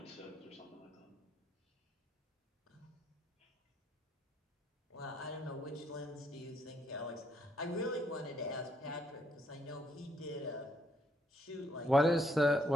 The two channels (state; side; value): normal; both; correlation 0.72